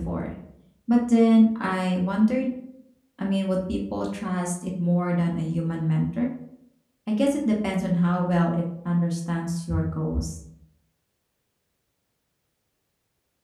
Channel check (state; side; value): identical; both; correlation 1.00